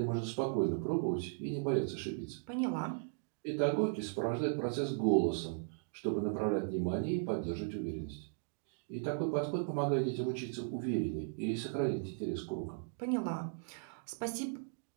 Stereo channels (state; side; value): silent; left; digital silence